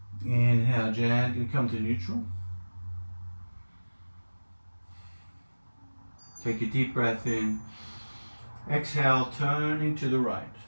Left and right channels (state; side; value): inverted; both; correlation -1.00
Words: Inhale, gently come to neutral. Take a deep breath in. Exhale, turning to the right.